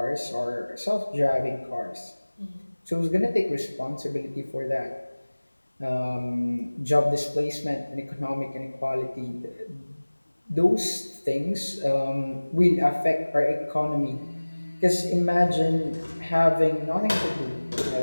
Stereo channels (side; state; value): both; inverted; correlation -1.00